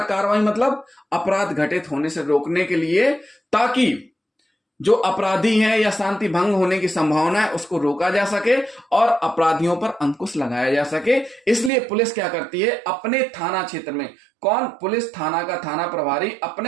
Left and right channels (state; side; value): drops out; left; at 11.7 s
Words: कार्रवाई मतलब अपराध घटित होने से रोकने के लिए, ताकि जो अपराधी है या शांति भंग होने की संभावना है उसको रोका जा सके और अपराधियों पर अंकुश लगाया जा सके। इसलिए पुलिस क्या करती है? अपने थाना क्षेत्र में, कौन? पुलिस थाना का थाना प्रभारी